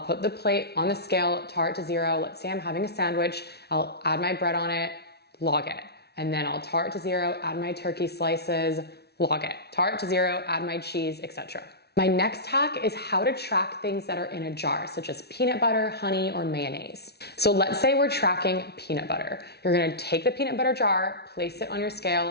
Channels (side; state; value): right; late; 0.48 ms